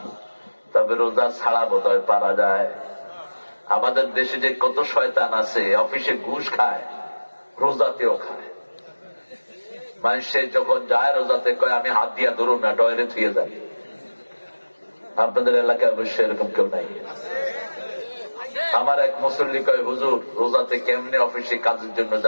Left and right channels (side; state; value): both; inverted; correlation -1.00